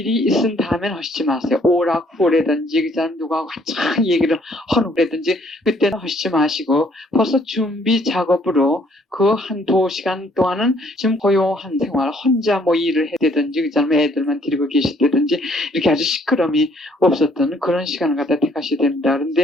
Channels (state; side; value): normal; both; correlation 0.64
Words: 있은 다음엔 하시지 마세요. 오락부라든지 그 사람 누구하고 한창 얘기를 하는 거라든지 그때는 하시지 마시고 벌써 준비 작업으로 그 한 2시간 동안은 지금 고요한 생활, 혼자 뭐 일을 해야 되든지 그 사람 애들만 데리고 계시다든지 이렇게 아주 시끄러움이 없었던 그런 시간을 갖다 택하셔야 됩니다.